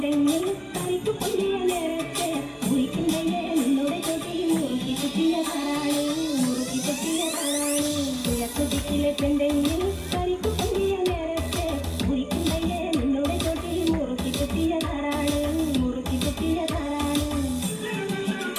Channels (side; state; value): both; identical; correlation 1.00